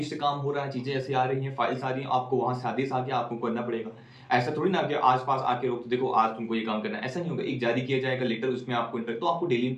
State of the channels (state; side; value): identical; both; correlation 1.00